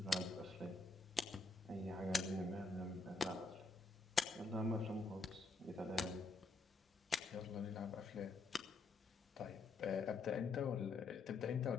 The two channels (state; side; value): quieter; right; 3.7 dB